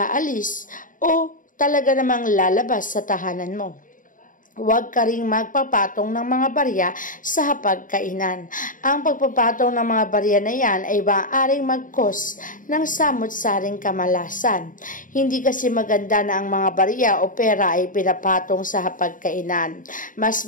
o talaga namang lalabas sa tahanan mo. Huwag ka ring magpapatong ng mga barya sa hapagkainan. Ang pagpapatong ng mga barya na yan ay maaaring mag-cause ng samot-saring kamalasan. Hindi kasi maganda na ang mga barya o pera ay pinapatong sa hapagkainan. Mas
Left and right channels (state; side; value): late; right; 0.38 ms